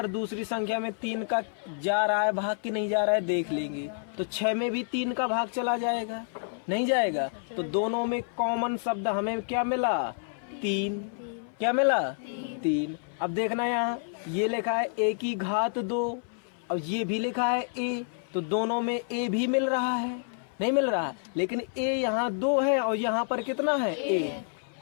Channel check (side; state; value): right; silent; 57 dB below the other